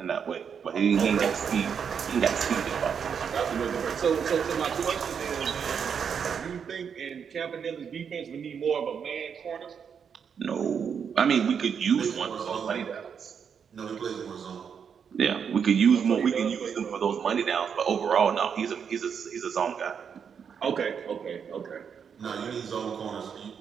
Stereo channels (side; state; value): left; quieter; 7.1 dB